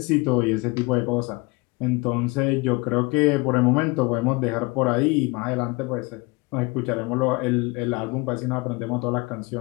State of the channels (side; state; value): right; quieter; 25.5 dB